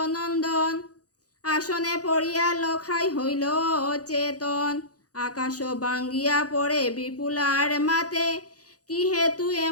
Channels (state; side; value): late; right; 0.67 ms